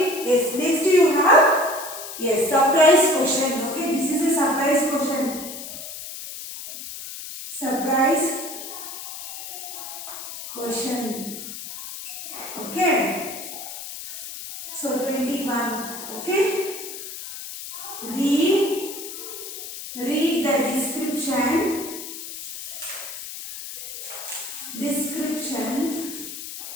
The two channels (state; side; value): noise; left; hiss, 9 dB below the sound